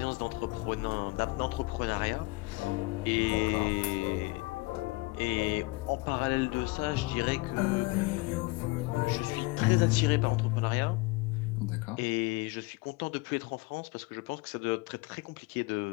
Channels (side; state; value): right; quieter; 23.5 dB